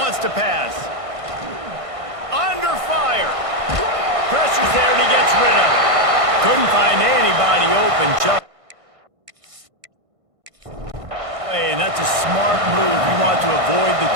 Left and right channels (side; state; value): left; late; 1.5 ms